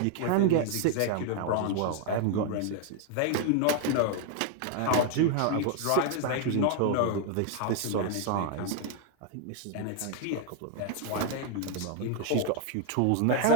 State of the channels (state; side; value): different; both; correlation 0.00